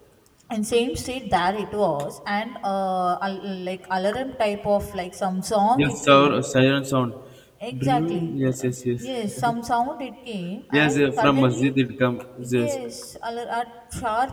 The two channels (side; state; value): both; identical; correlation 1.00